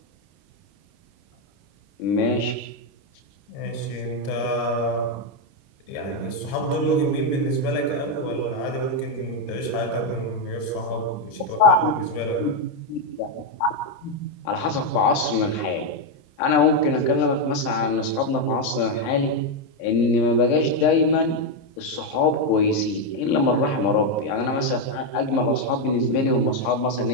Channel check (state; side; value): late; right; 30 ms